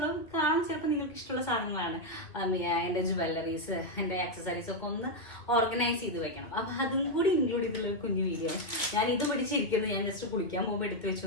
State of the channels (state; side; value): late; right; 2.5 ms